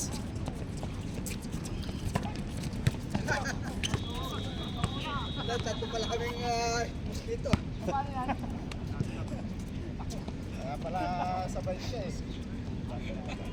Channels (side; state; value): both; identical; correlation 1.00